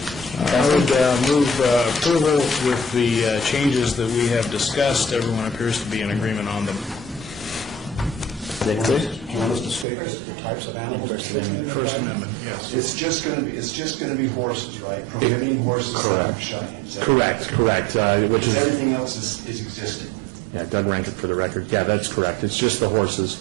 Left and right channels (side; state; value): left; drops out; at 9.9 s